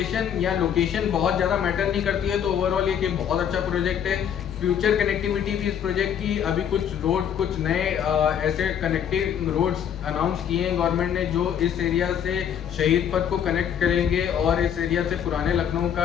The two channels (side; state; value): right; quieter; 8.8 dB